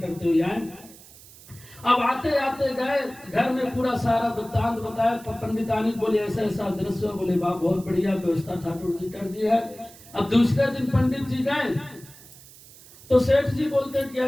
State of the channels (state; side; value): noise; right; hiss, 21 dB below the sound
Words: हुए आए। अब आते आते गए, घर में पूरा सारा वृत्तांत बताया। पंडितानी बोले ऐसा ऐसा दृश्य, बोले वाह बहुत बढ़िया व्यवस्था ठाकुर जी कर दी है, अब दूसरे दिन पंडित जी गए तो सेठ जी बोलते हैं कि